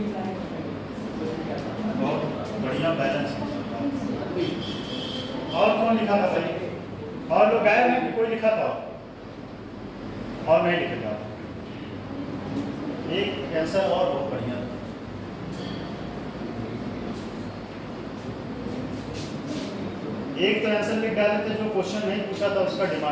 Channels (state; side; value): identical; both; correlation 1.00